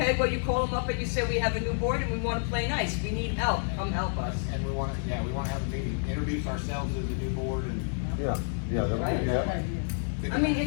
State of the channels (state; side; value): silent; right; digital silence